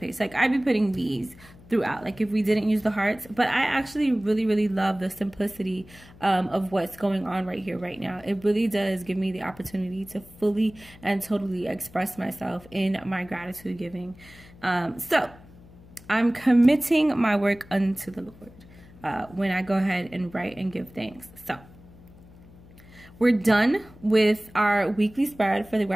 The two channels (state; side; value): noise; left; hum, 22 dB below the sound